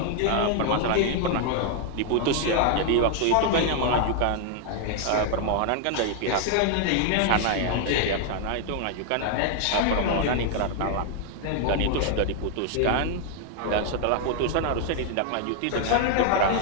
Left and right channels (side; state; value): both; different; correlation 0.00